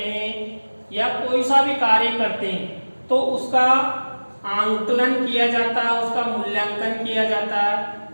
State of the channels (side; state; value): both; inverted; correlation -1.00